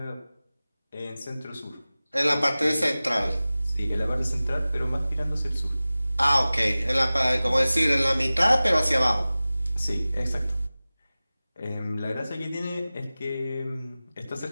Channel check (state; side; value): inverted; both; correlation -0.97